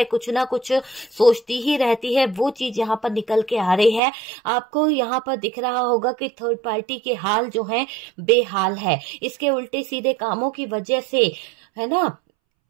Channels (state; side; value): drops out; left; at 4.0 s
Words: कुछ ना कुछ सोचती ही रहती है। वो चीज यहाँ पर निकल के आ रही है। आपको यहाँ पर दिख रहा होगा कि थर्ड पार्टी के हाल जो है बेहाल है, इसके उल्टे सीधे कामों की वजह से, है ना